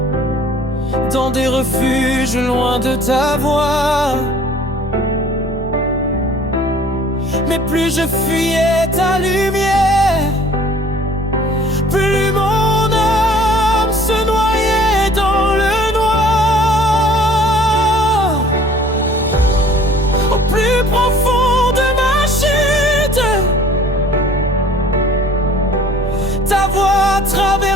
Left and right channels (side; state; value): both; normal; correlation 0.52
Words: dans des refuges loin de ta voix. Mais plus je fuyais ta lumière, plus mon âme se noyait dans le noir. Au plus profond de ma chute, ta voix